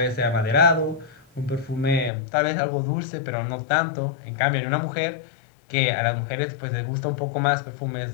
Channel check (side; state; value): right; drops out; at 2.1 s